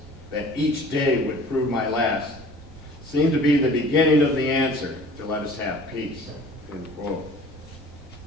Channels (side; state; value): both; normal; correlation 0.47